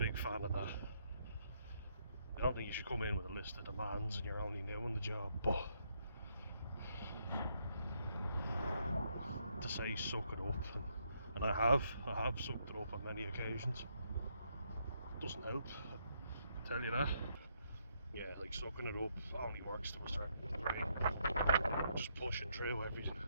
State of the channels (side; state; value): both; inverted; correlation -0.75